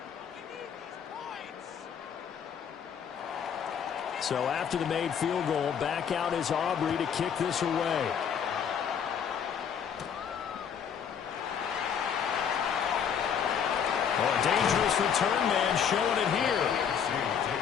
So after the made field goal, back out is Aubrey to kick this away. Oh, a dangerous return man showing it here.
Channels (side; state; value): right; quieter; 7.7 dB